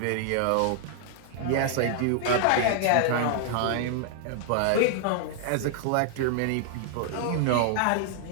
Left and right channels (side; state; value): both; different; correlation 0.00